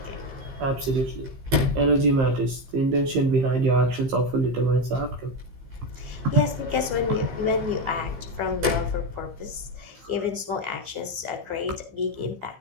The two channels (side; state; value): left; late; 15 ms